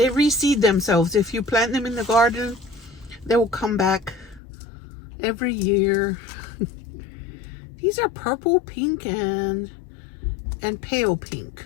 reseed themselves. If you plant them in the garden, they will come back every year. These are purple, pink, and pale pink.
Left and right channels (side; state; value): right; drops out; at 4.4 s